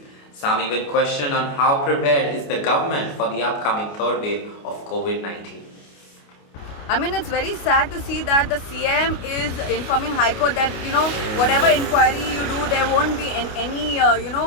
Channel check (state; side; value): late; right; 28 ms